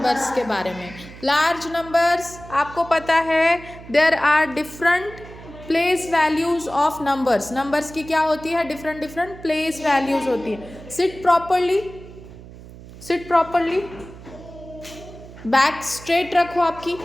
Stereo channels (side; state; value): right; noise; hum, 17 dB below the sound